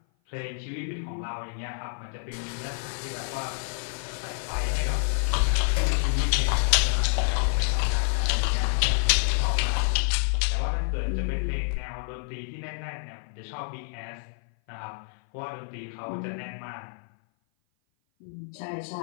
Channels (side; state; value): right; silent; 56 dB below the other